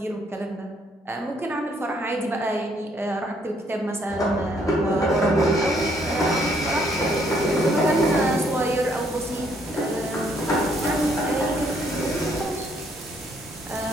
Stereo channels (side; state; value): both; normal; correlation 0.68